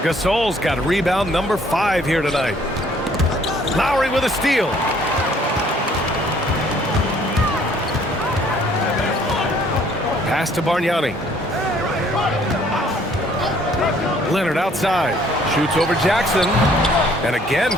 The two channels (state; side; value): normal; both; correlation 0.61